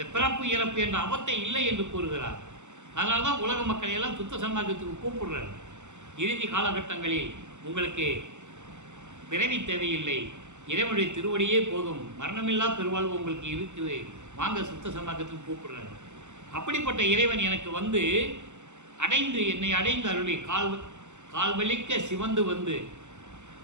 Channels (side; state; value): left; late; 0.84 ms